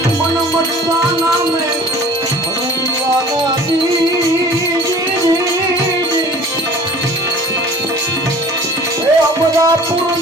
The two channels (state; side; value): normal; both; correlation 0.47